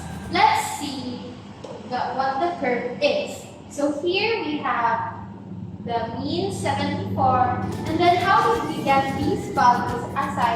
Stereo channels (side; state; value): both; identical; correlation 1.00